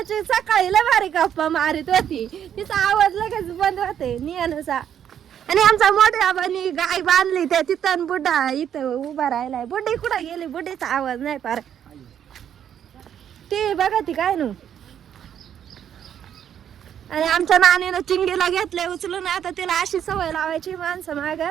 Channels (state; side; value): quieter; left; 9.4 dB